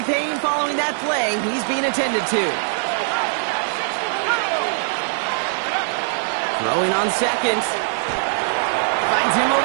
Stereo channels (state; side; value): silent; left; digital silence